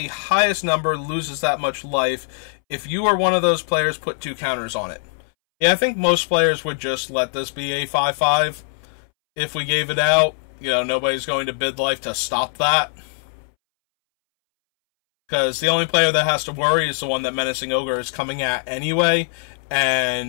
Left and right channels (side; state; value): right; silent; 65 dB below the other